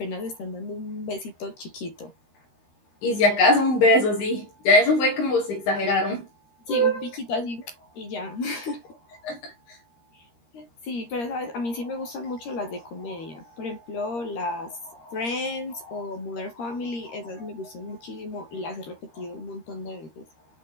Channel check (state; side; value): late; right; 13 ms